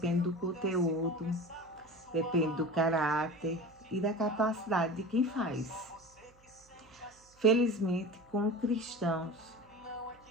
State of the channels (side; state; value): right; noise; hum, 29 dB below the sound